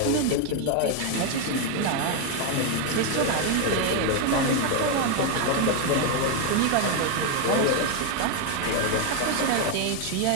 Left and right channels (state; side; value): different; both; correlation 0.01